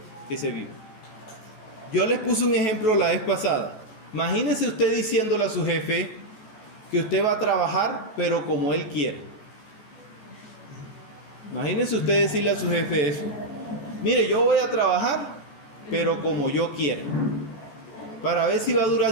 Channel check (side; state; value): right; late; 14 ms